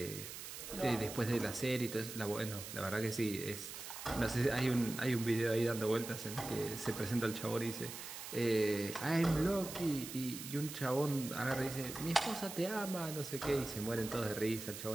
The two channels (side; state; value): right; noise; hiss, 9 dB below the sound